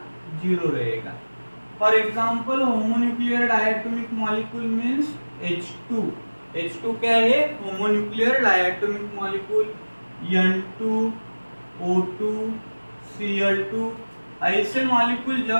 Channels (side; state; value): both; inverted; correlation -1.00